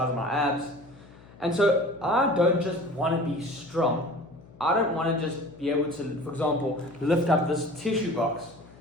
my abs. And so I don't just want to be strong. I don't want to just be able to, for example, lift up this tissue box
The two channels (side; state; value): left; noise; hum, 23 dB below the sound